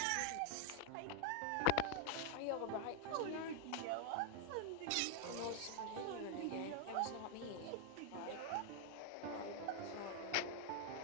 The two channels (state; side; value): different; both; correlation 0.01